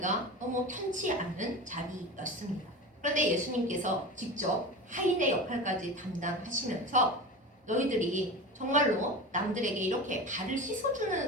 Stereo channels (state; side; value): normal; both; correlation 0.29